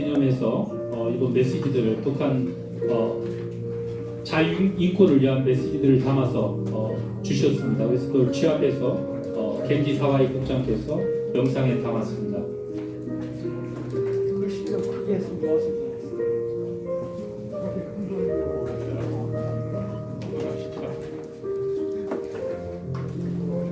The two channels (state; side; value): identical; both; correlation 1.00